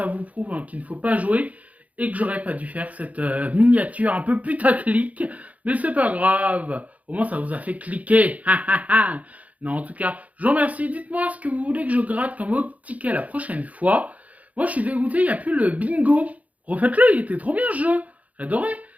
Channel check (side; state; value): left; late; 0.071 ms